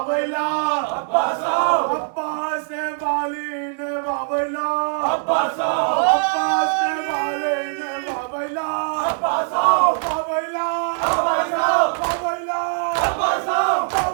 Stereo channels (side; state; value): left; silent; digital silence